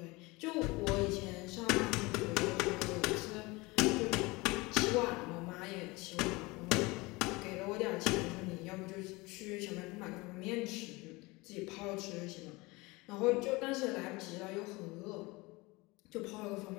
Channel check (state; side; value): quieter; right; 23.5 dB